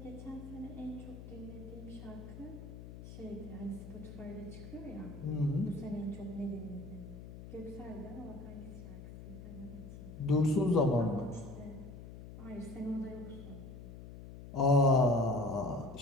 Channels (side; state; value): left; noise; hum, 13 dB below the sound